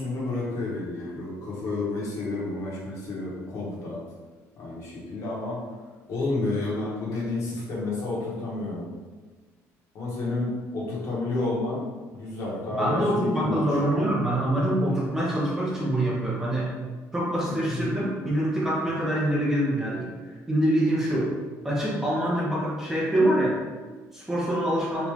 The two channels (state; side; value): normal; both; correlation 0.71